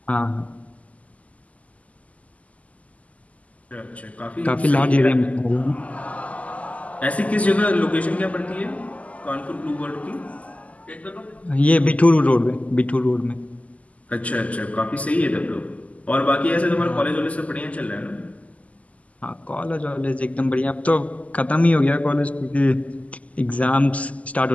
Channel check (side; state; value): right; late; 0.071 ms